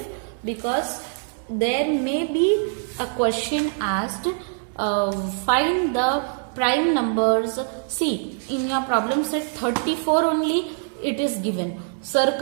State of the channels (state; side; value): silent; left; 62 dB below the other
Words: because there may be a question asked, find the prime numbers. See, in your problem set 34 only it is given.